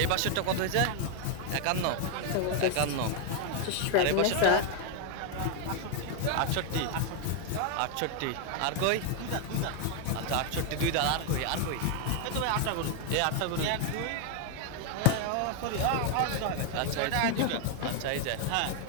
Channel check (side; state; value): both; different; correlation 0.01